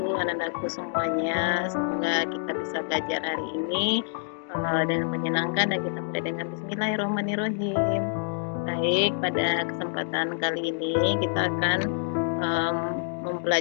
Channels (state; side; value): silent; right; digital silence